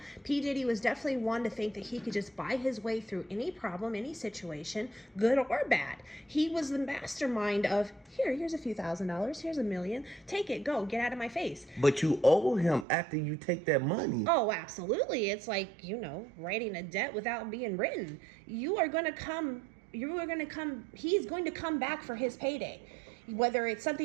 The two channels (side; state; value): left; drops out; at 12.9 s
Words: P. Diddy was definitely one to think that he could just buy his way through any problem, any situation, good or bad. He was the mastermind of, here's a few $1,000s, here's $1 million, take it, go, get out of my face. But you owe him after you take that money. Oh, absolutely. It's like, you know, writing a debt without being written. He's going to come back for his payday. Whether it's